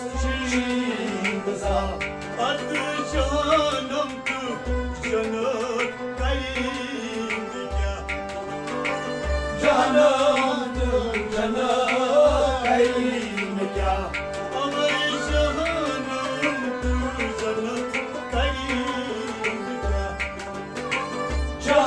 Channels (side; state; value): both; identical; correlation 1.00